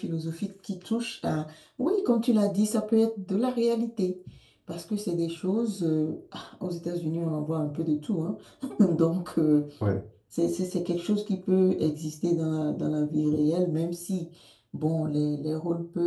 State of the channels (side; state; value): both; identical; correlation 1.00